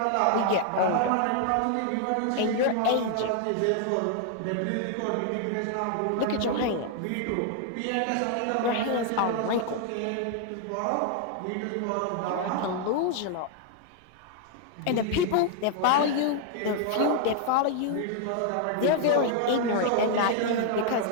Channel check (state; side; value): different; both; correlation 0.00